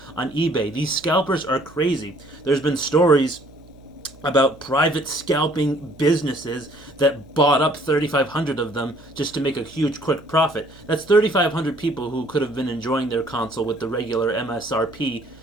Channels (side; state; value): right; noise; hum, 24 dB below the sound